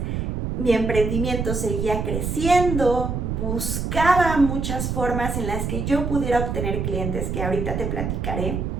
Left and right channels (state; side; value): noise; right; rumble, 2 dB below the sound